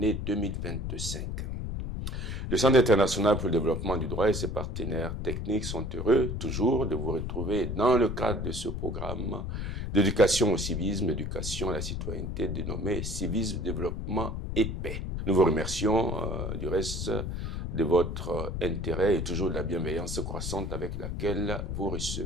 2025. Le Centre international pour le développement du droit et ses partenaires techniques sont heureux toujours de vous retrouver dans le cadre de ce programme d'éducation au civisme, éducation à la citoyenneté dénommé Civisme, Développement et Paix. Nous vous remercions du reste de votre intérêt et toujours de la bienveillance croissante avec laquelle vous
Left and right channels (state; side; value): noise; left; rumble, 4 dB below the sound